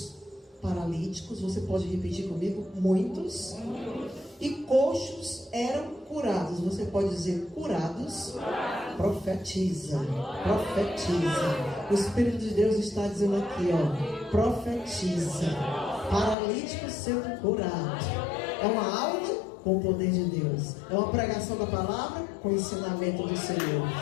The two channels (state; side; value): drops out; right; at 16.4 s